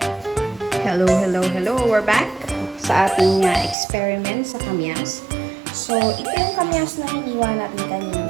Hello. We're back sa ating experiment sa kamyas. So, ito yung kamyas na hiniwa natin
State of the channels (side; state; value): left; drops out; at 3.8 s